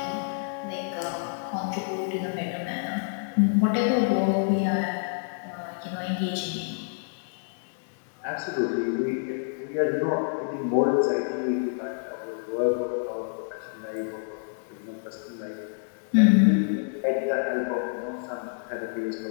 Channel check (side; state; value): right; silent; digital silence